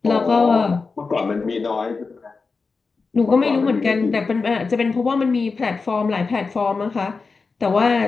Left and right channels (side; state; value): right; quieter; 4.5 dB